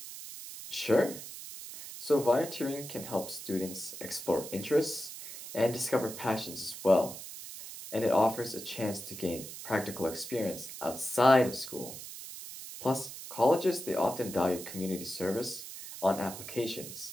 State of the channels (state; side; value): noise; right; hiss, 11 dB below the sound